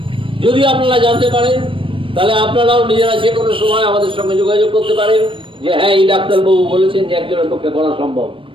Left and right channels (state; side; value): late; left; 0.25 ms